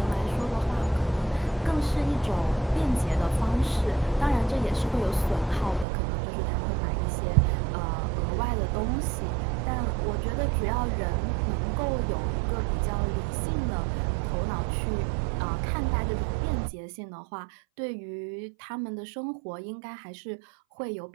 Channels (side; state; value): left; drops out; at 5.9 s